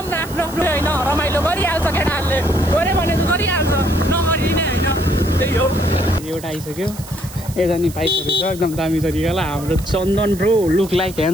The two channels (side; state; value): right; noise; hiss, 16 dB below the sound